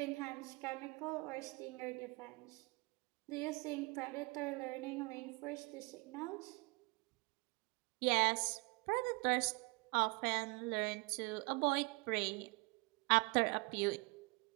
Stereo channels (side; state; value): left; quieter; 27.7 dB